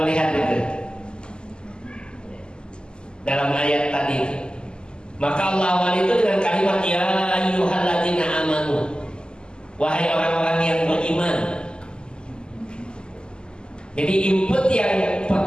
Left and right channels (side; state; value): right; late; 0.048 ms